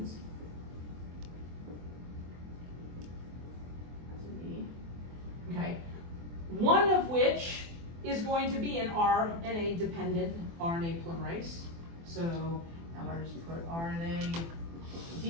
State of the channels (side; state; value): left; late; 24 ms